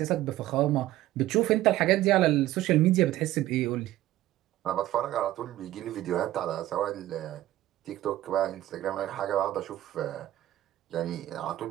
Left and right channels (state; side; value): quieter; left; 14.8 dB